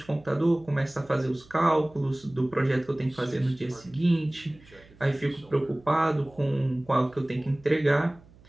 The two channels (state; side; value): noise; right; hum, 25 dB below the sound